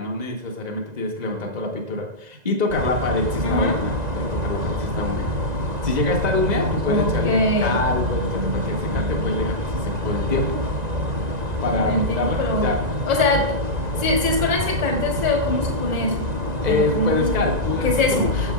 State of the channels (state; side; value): late; left; 2.0 ms